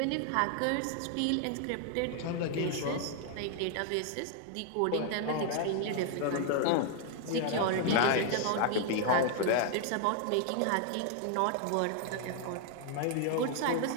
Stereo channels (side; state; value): both; different; correlation 0.00